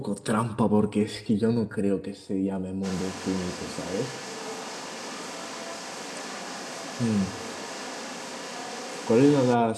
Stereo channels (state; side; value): identical; both; correlation 1.00